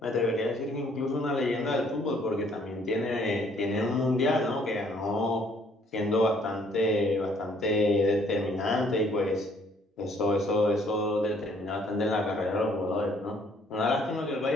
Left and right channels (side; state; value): both; normal; correlation 0.63